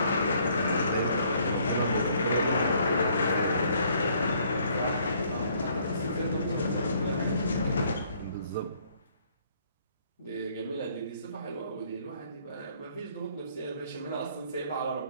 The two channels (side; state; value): both; inverted; correlation -0.64